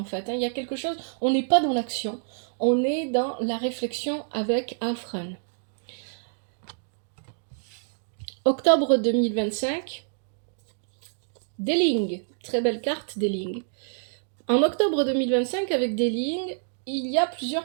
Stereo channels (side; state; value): left; silent; digital silence